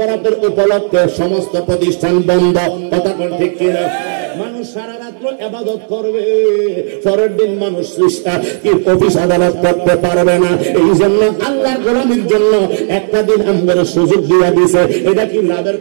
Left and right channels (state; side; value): silent; left; digital silence